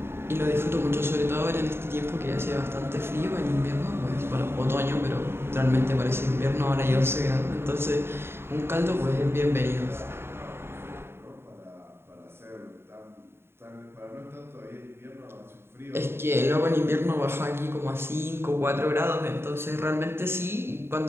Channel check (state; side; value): late; left; 0.11 ms